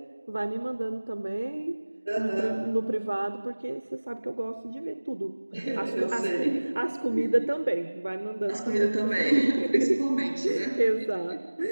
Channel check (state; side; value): inverted; both; correlation -1.00